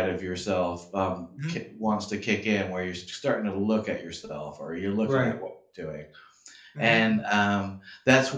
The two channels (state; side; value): identical; both; correlation 1.00